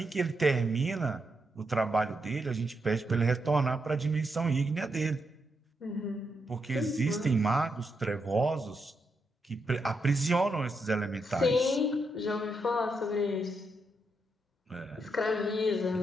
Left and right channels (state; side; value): normal; both; correlation 0.82